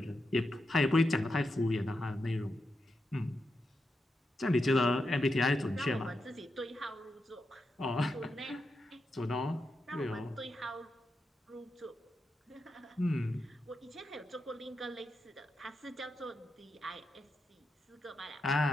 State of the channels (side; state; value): both; normal; correlation 0.87